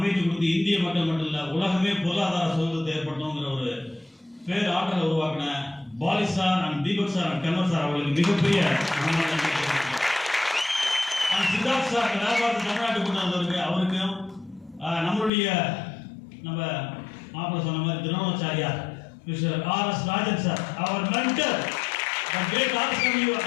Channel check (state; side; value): drops out; right; at 15.3 s